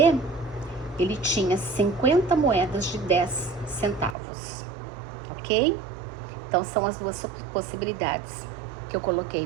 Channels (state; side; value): drops out; left; at 4.2 s